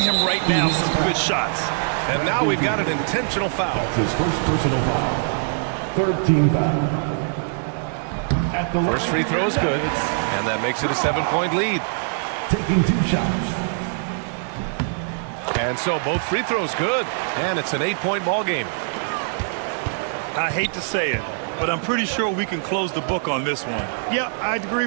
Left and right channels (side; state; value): left; silent; 64 dB below the other